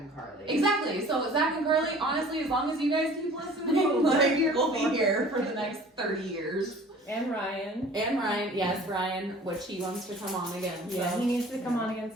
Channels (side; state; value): both; normal; correlation 0.48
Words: Carly. exactly. So Zach and Carly, honestly, as long as you guys keep listening, like we'll be here for the next 30 years. And Ryan. And Ryan, yes, Ryan, which he wants to come on again. Yeah, So. he needs to come on again